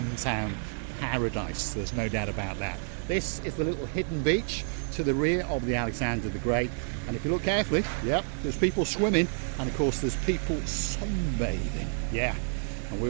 paradise. There's no doubt about that. This is the little hidden beach to the rear of the Alexander the Great, and if you look carefully, yep, there's people swimming, and of course there's people sunbathing. Yeah, and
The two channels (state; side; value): silent; left; 58 dB below the other